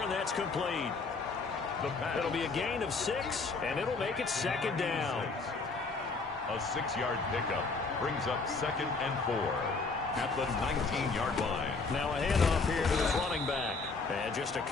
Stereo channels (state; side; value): quieter; right; 4.1 dB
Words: and that's complete. It'll be a gain of 6, and it'll make it 2nd down. A 6-yard pickup brings up 2nd and 4 at the 19-yard line. Now a handoff here to his running back. And just a